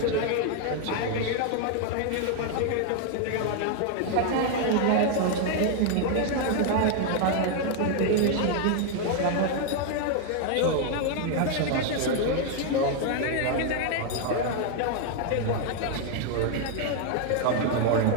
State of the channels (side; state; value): both; different; correlation 0.00